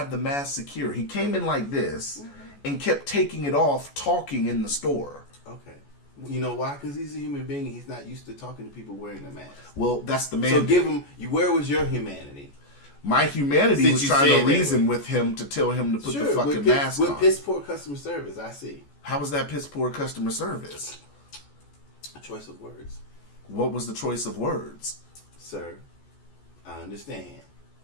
the mask secure. He came in like this and kept taking it off, talking in the store. Okay. You know why? Because he's a human being and he's not used to talking to people wearing the mask. Well, that's the man. So give him, where was your humanity? My humanity Since was you trying said to reason with him to tell him to put the fucking mask on. With piss poor customer service, I see. How was that piss poor customer service? A choice of words. What was the choice of words? Sir, I understand.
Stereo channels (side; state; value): right; late; 14 ms